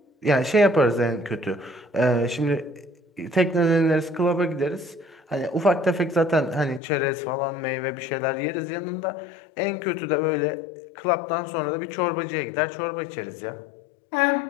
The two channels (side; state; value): right; drops out; at 6.8 s